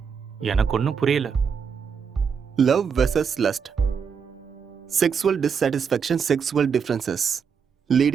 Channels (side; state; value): left; quieter; 6.5 dB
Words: எனக்கு ஒன்றும் புரியல. Love versus lust, sexual dissatisfaction, sexual differences